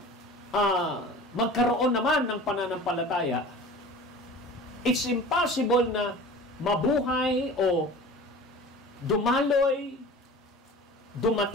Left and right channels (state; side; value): normal; both; correlation 0.39